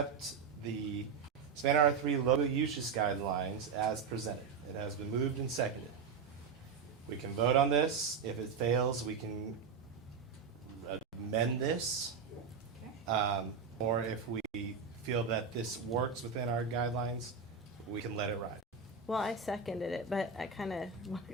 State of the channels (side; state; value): left; quieter; 5.7 dB